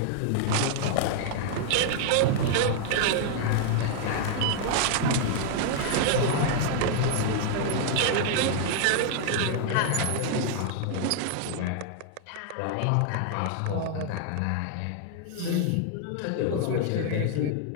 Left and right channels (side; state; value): both; different; correlation 0.00